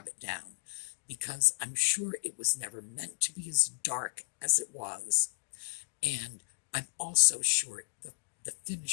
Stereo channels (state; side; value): silent; right; digital silence